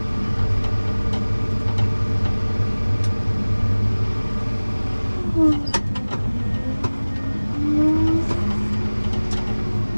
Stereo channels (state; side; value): inverted; both; correlation -1.00